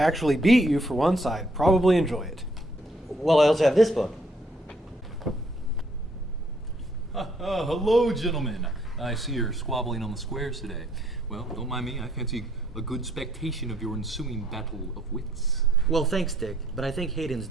beat you for once, I'd probably enjoy it. Well, I also have this book. Hello, gentlemen. I see you're squabbling on the squares today. Well, don't mind me. I fancy a good spectation of your ensuing battle of wits. Well, thanks, Dick, but I think Hayden's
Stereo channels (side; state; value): both; normal; correlation 0.67